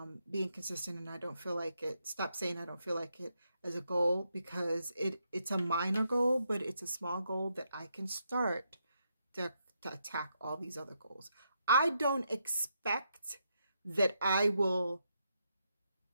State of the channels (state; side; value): inverted; both; correlation -0.80